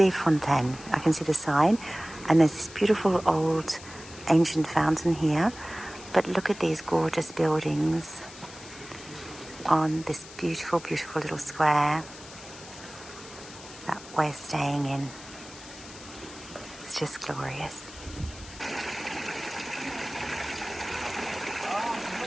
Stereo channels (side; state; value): left; noise; hiss, 16 dB below the sound